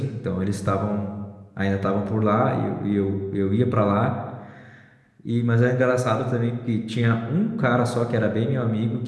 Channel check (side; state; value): both; identical; correlation 1.00